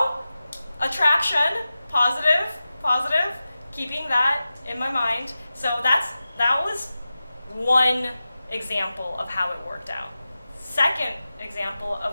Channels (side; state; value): both; inverted; correlation -0.94